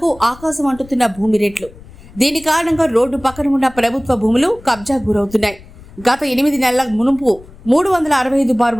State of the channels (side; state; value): left; noise; rumble, 21 dB below the sound